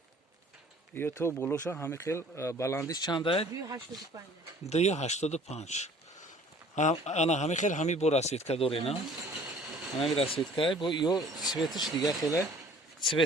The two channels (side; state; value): both; normal; correlation 0.52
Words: یا تو بولوشا همه خیل بلندیش چند است 285 285 انا همه خیل همی بو رسید که دوره نه همی رسید که بو یو سویتش دیگه خیلی